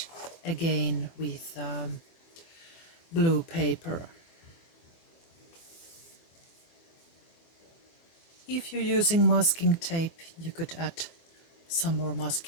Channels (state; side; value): late; right; 24 ms